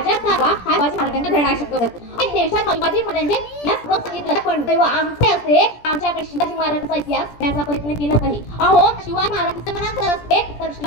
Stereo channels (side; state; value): right; late; 17 ms